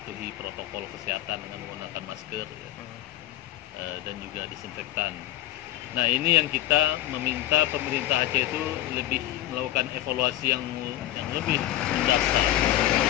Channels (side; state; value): right; quieter; 14.4 dB